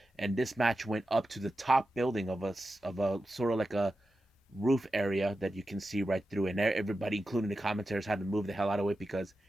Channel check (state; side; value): normal; both; correlation 0.92